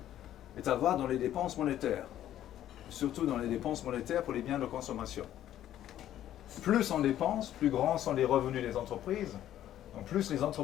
est à voir dans les dépenses monétaires, surtout dans les dépenses monétaires pour les biens de consommation. Plus on dépense, plus grands sont les revenus des entreprises, donc plus les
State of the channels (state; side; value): quieter; right; 12.0 dB